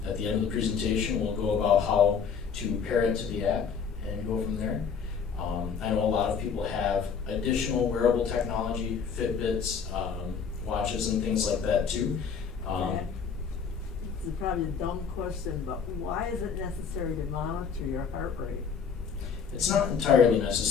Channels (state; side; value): quieter; right; 6.4 dB